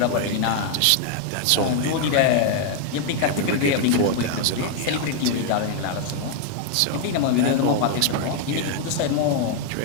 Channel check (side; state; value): both; different; correlation 0.00